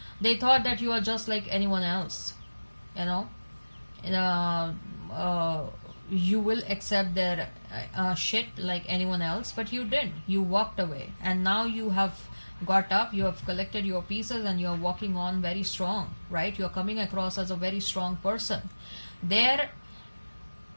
they thought that you are just like anyone else. You know, you will accept their shit like anyone else, but you didn't. You walked away, and now you have got up, you have collected your pieces, and you're walking on very strong, right? You're coming across as a very strong person. Their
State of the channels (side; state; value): both; inverted; correlation -1.00